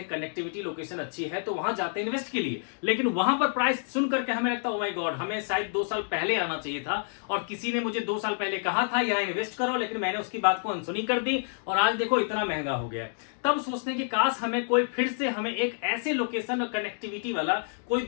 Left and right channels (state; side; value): silent; right; digital silence